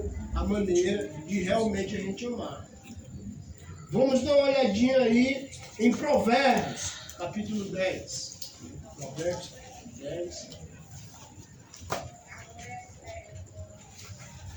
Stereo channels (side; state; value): both; identical; correlation 1.00